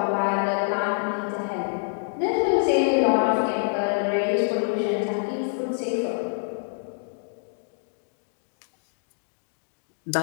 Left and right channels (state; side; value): silent; right; digital silence